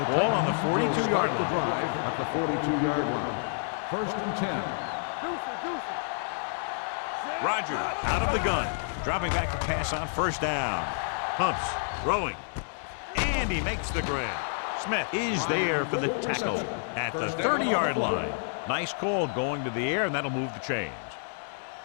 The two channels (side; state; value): right; silent; digital silence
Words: ball on the 42-yard line. At the 42-yard line. 1st and 10. Rodgers out of the gun. Dropping back to pass on 1st down. Pumps, throwing. And he makes the grab. Smith is there for the tackle at the 30-yard line. Nice call going to the air, and that'll move the chains.